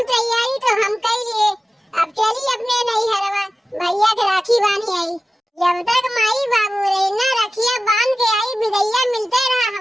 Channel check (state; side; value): normal; both; correlation 0.95